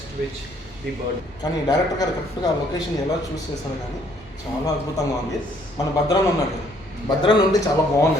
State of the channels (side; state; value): both; normal; correlation 0.64